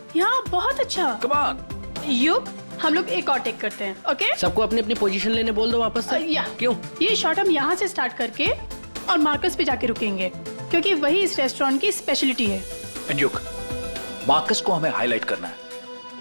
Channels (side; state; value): both; inverted; correlation -1.00